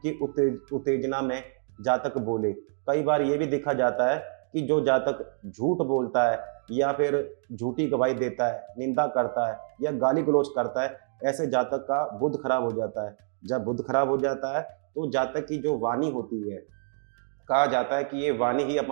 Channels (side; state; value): left; silent; 58 dB below the other